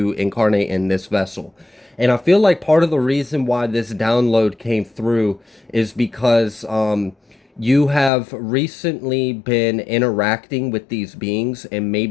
incarnate in this vessel. And I feel like part of the reason why this download came through is because you have recently been interacting with these beings and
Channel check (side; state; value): right; drops out; at 8.1 s